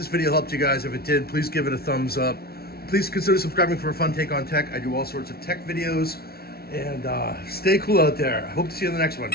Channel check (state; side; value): late; right; 0.45 ms